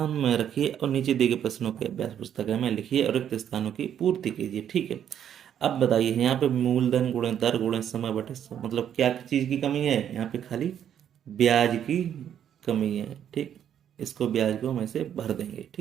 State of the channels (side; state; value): left; quieter; 9.6 dB